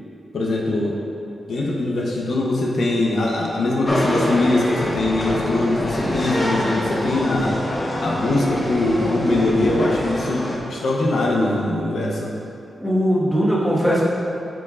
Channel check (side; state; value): both; normal; correlation 0.88